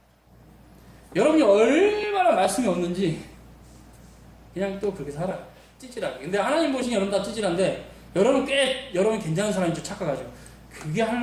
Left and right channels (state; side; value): identical; both; correlation 1.00